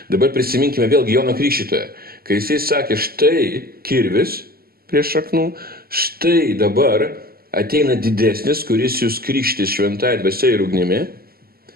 Dabar prisiminkime vėlgi Jono Krikštytoją, kai jisai sakė, štai kirvis prie šaknų, štai dabar ateina didesnis, kuris jūs krikštys šventąja dvasia ir ugnimi,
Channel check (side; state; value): left; late; 0.44 ms